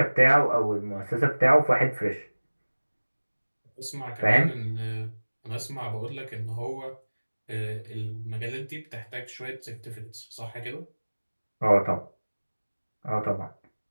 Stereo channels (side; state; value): both; inverted; correlation -1.00